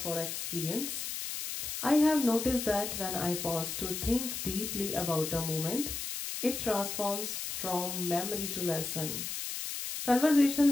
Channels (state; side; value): noise; left; hiss, 5 dB below the sound